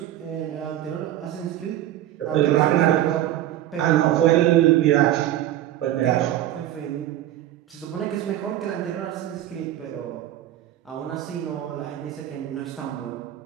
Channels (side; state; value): left; quieter; 12.9 dB